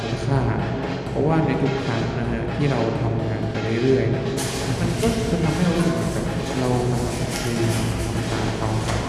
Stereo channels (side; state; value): both; identical; correlation 1.00